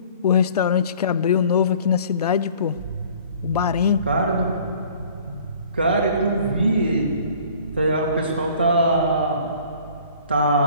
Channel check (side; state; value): both; inverted; correlation -0.51